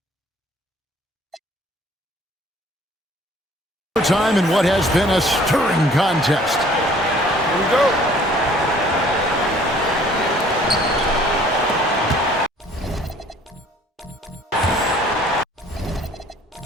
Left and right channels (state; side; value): normal; both; correlation 0.55